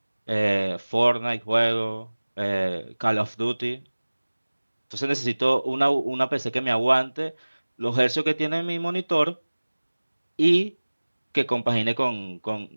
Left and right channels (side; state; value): both; inverted; correlation -1.00